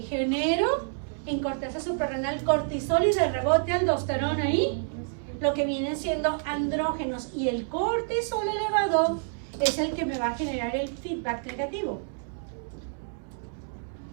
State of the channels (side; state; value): left; silent; 59 dB below the other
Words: genero en corteza suprarrenal cortisol y de rebote aldosterona ahí, lo que vienen siendo andrógenos, y el cortisol elevado es el que me va a generar el feedback negativo.